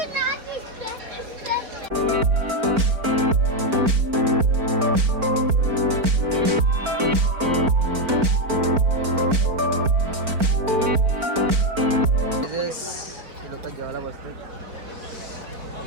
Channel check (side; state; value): left; late; 4.4 ms